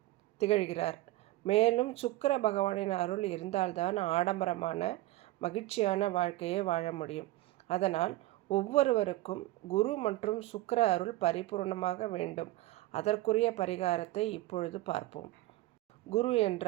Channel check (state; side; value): quieter; left; 17.1 dB